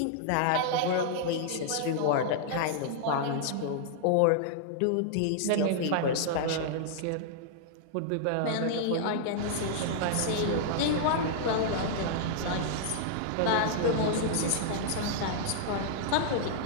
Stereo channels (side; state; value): both; different; correlation -0.01